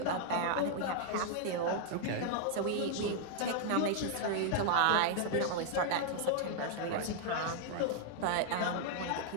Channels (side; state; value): both; different; correlation -0.01